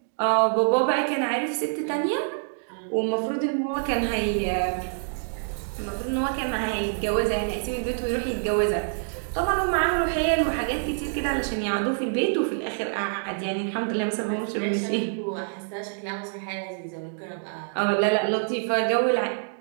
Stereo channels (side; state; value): left; silent; digital silence